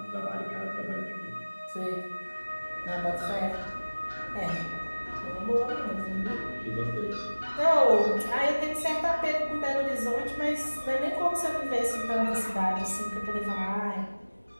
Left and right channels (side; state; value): both; inverted; correlation -1.00